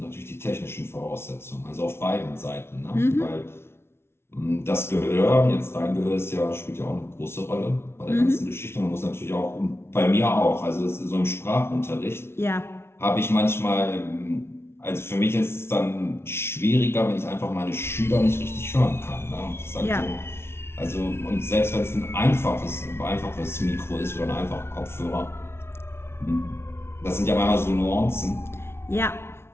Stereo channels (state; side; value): late; right; 0.12 ms